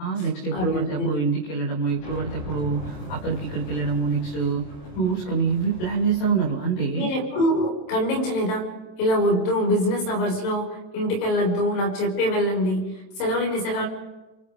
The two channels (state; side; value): late; right; 27 ms